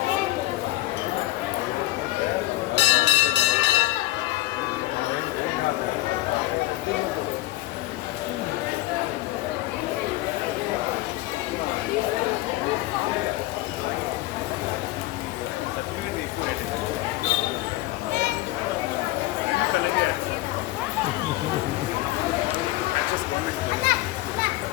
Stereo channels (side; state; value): right; quieter; 17.7 dB